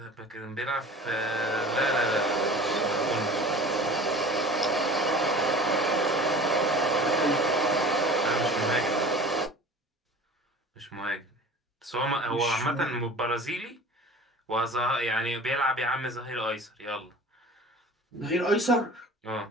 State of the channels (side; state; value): both; normal; correlation 0.41